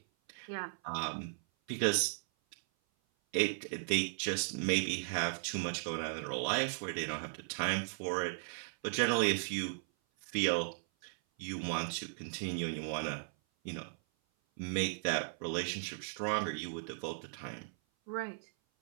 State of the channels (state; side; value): silent; left; 53 dB below the other